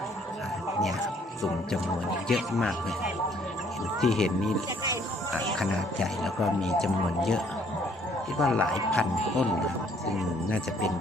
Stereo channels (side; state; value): both; normal; correlation 0.63